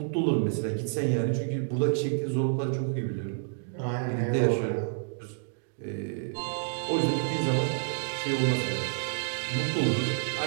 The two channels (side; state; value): left; silent; digital silence